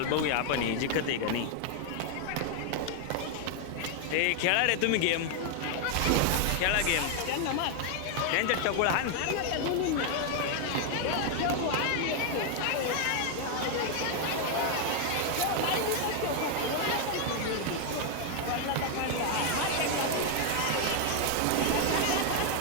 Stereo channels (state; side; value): different; both; correlation 0.00